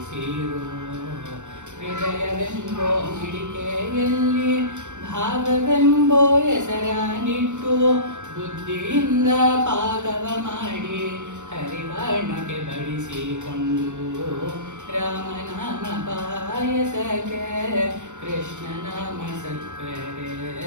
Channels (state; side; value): late; left; 0.84 ms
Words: ಹೃದಯವೆಂಬೋ ಮಿಡಿಕೆಯಲ್ಲಿ ಭಾವವೆಂಬೋ ಹೆಸರನಿಟ್ಟು ಬುದ್ಧಿಯಿಂದ ಪಾಕವ ಮಾಡಿ ಹರಿವರ್ಣಕ್ಕೆ ಬಡಿಸಿಕೊಂಡು. ರಾಮನಾಮ ಪಾಯಸಕ್ಕೆ ಕೃಷ್ಣ ನಾಮ ಸಕ್ಕರೆ